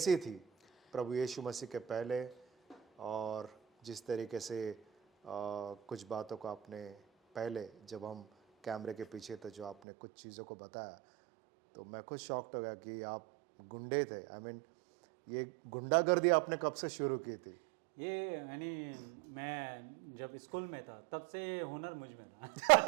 थी प्रभु यीशु मसीह के पहले, और जिस तरीके से कुछ बातों को आपने पहले, जब हम कैमरे के पीछे थे, जो आपने कुछ चीज़ों को बताया, तो मैं खुद शॉक्ड हो गया कि आप गुंडे थे। आई मीन, ये गुंडागर्दी आपने कब से शुरू की थी? ये यानी मैं जब स्कूल में था तब से ये हुनर मुझ में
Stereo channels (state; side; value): drops out; left; at 9.8 s